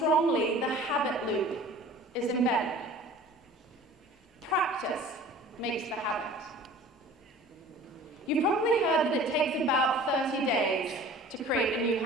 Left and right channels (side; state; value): both; normal; correlation 0.45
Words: the habit loop is embedded. Practice makes the habit. You've probably heard that it takes about 30 days to create a new